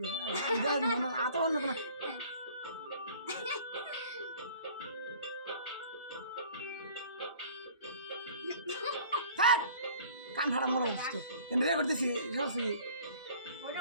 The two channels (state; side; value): inverted; both; correlation -0.50